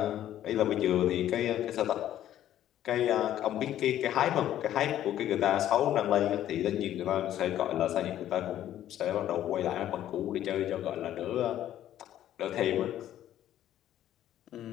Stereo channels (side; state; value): right; quieter; 12.0 dB